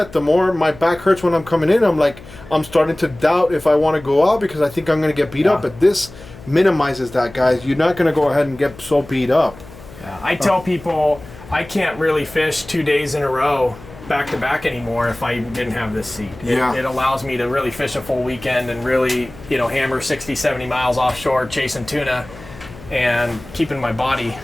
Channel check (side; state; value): left; noise; hum, 18 dB below the sound